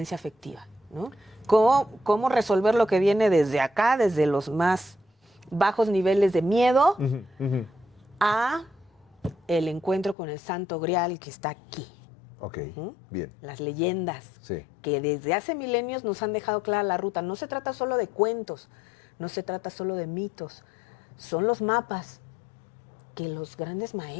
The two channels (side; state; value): right; drops out; at 10.2 s